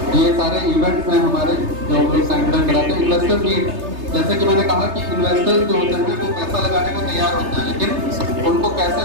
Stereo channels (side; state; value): left; late; 3.3 ms